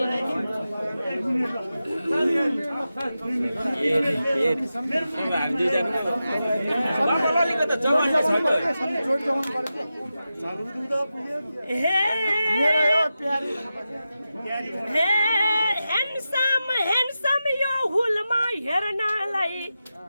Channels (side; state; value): both; inverted; correlation -0.91